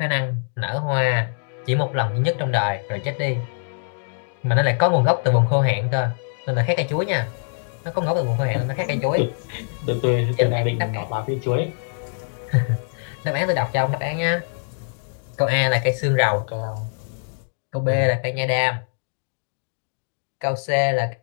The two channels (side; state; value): right; silent; digital silence